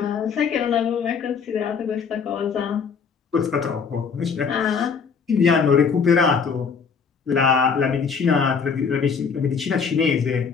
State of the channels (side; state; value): right; quieter; 5.9 dB